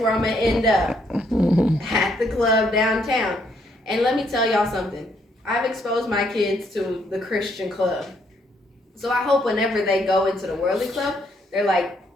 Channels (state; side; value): normal; both; correlation 0.72